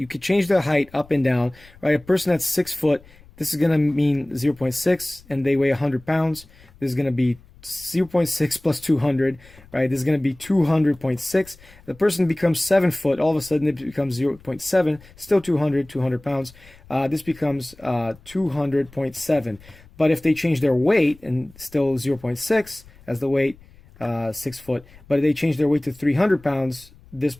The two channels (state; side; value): noise; left; rumble, 25 dB below the sound